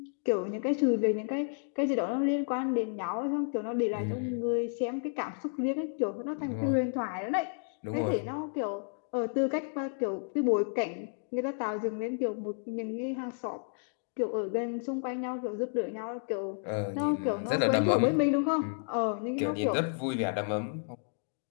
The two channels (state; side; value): silent; right; digital silence